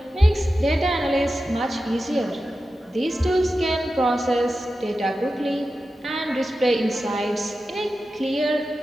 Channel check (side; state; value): both; normal; correlation 0.92